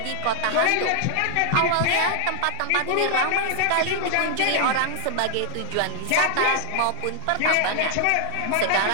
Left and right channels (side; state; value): both; different; correlation 0.00